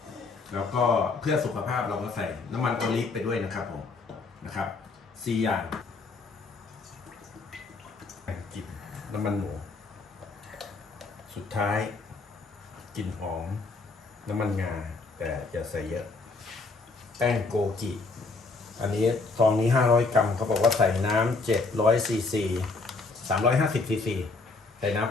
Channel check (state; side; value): quieter; right; 3.8 dB